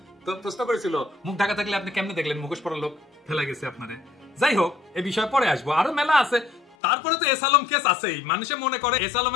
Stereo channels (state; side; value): drops out; right; at 6.8 s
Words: তো প্রশ্ন করেছিল মুখ ঢাকা থাকলে আপনি কেমনে দেখলেন মুখোশ পরা লোক ফেলাই গেছে আপনারে? যাই হোক, এই বিষয়ে পরে আসবো, আরো মেলা আছে। তারপরে তো এস আলম কেস আছেই। মানুষে মনে করে এস